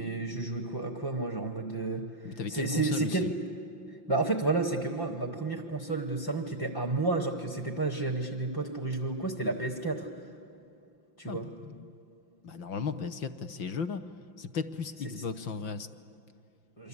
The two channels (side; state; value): right; late; 5.9 ms